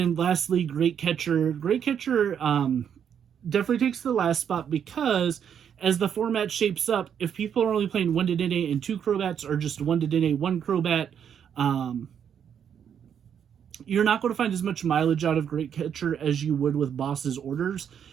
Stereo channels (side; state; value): left; quieter; 8.3 dB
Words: lastly, Great Catcher. Great Catcher definitely takes the last spot because as the format shapes up, if people are only playing 1 Dedenne and 2 Crobats or just 1 Dedenne, 1 Crobat, you're not going to find as much mileage out of Great Catcher as you would with Boss's Orders.